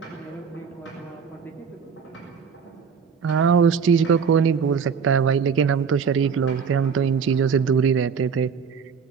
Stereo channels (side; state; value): left; quieter; 6.2 dB